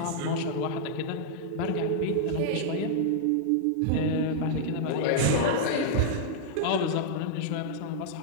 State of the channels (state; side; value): different; both; correlation -0.01